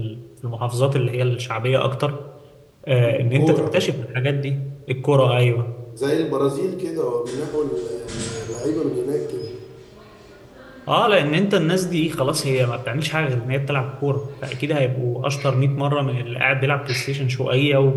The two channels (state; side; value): identical; both; correlation 1.00